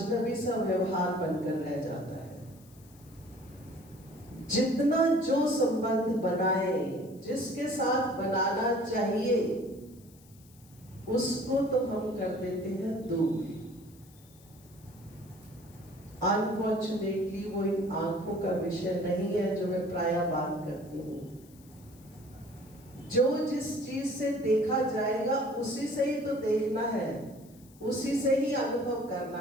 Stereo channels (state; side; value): noise; left; hiss, 26 dB below the sound